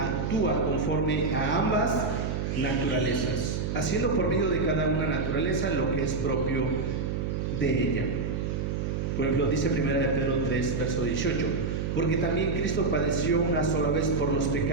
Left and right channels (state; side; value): noise; right; hum, 1 dB below the sound